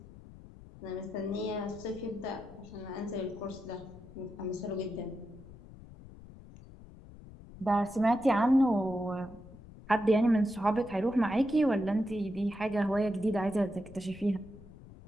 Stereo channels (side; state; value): left; noise; rumble, 18 dB below the sound